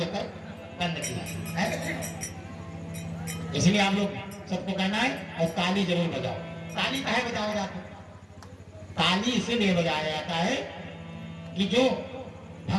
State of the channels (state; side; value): identical; both; correlation 1.00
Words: बंद किया। इसलिए आप लोग सबको कहना है और ताली जरूर बजाओ। ताली काहे बजाया जाता है? ताली इसीलिए बजाया जाता है कि जो